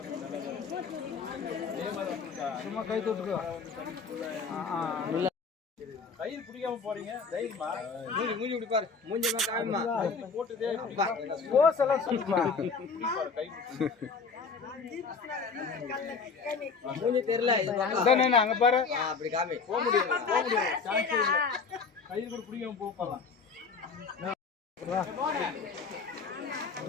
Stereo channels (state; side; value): quieter; right; 5.0 dB